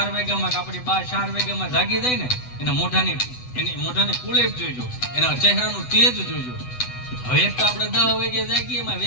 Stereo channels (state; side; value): late; right; 8.0 ms